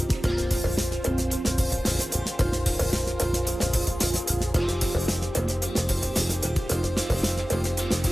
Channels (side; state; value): both; normal; correlation 0.96